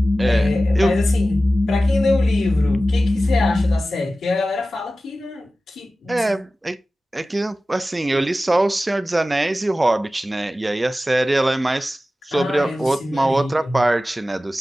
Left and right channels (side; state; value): both; normal; correlation 0.95